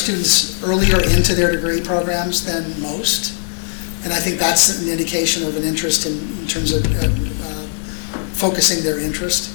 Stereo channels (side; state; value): right; silent; 58 dB below the other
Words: earlier into their degree programs than most, and I think that's an indication of an interest in terms of focusing their interest.